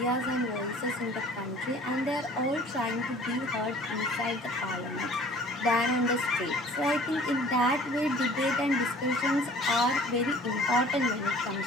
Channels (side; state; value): both; normal; correlation 0.50